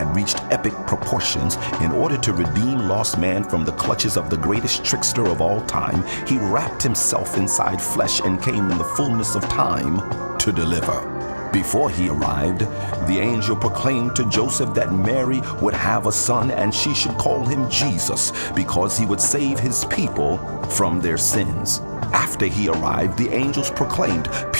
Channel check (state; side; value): inverted; both; correlation -1.00